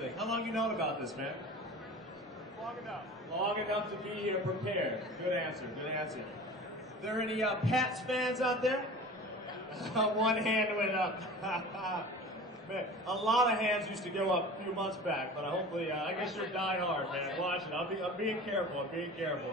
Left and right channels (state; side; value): normal; both; correlation 0.38